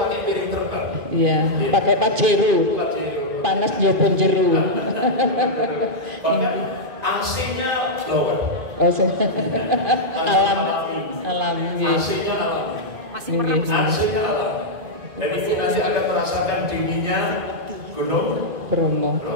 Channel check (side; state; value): left; late; 2.4 ms